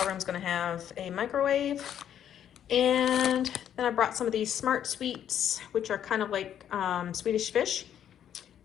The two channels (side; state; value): right; quieter; 9.8 dB